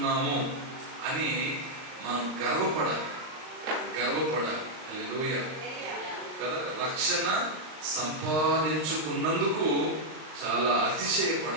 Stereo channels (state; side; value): late; left; 39 ms